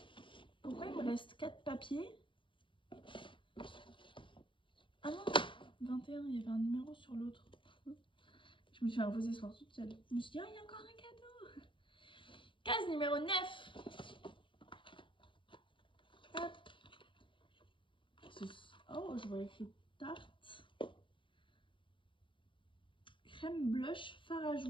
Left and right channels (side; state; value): right; late; 0.24 ms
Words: Pourquoi il me reste 4 papiers? Ah non, 21, il y avait un numéro sur l'autre. Je me suis imposée ce soir toute seule. Je me suis dit, oh, il y a encore un cadeau. Case numéro 9. Hop. Oh, je vois écrit tarte. Crème blush